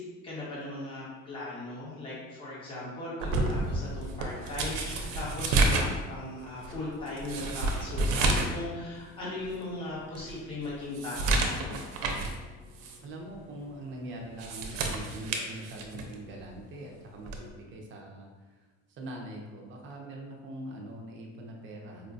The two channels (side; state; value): both; normal; correlation 0.43